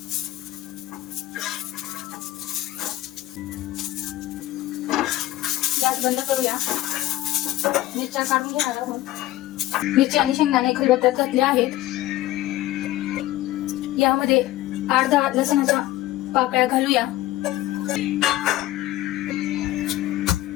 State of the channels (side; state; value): right; quieter; 15.7 dB